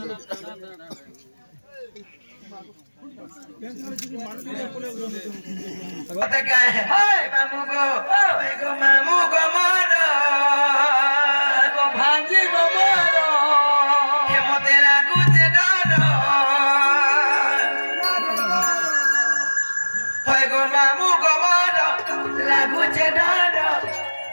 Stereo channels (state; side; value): inverted; both; correlation -1.00